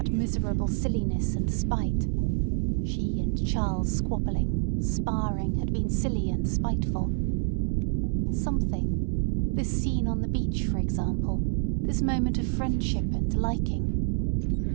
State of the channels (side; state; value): left; silent; 60 dB below the other